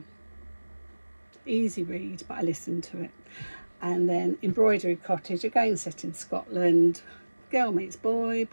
easy read, but I listened to it. And then Embroidery Cottage, again set in Scotland. Girl meets boy,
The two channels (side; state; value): both; inverted; correlation -1.00